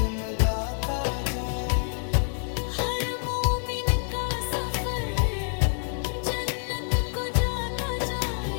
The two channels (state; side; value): silent; right; 59 dB below the other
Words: जाए। हर मोमिन का सफर जन्नत को जाता